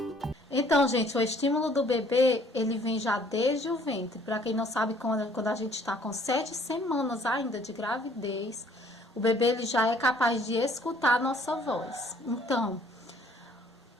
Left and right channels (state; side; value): normal; both; correlation 0.59